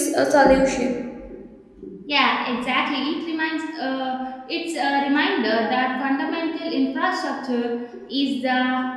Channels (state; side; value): identical; both; correlation 1.00